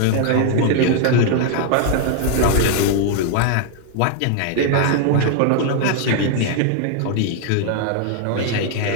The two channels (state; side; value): different; both; correlation 0.00